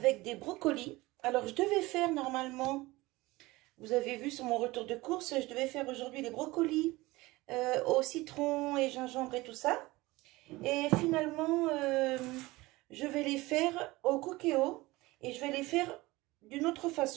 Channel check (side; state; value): left; quieter; 20.5 dB